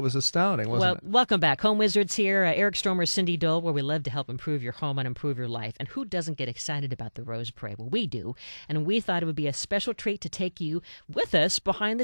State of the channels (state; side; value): inverted; both; correlation -1.00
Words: was astounding, wasn't it? Welcome back. Home Wizards here. Eric Stormer, Cindy Dole, where we love to help improve your home and improve your life. And who doesn't get excited about the Rose Parade? Well, we do. And we thought it would be a special treat to take you with us behind the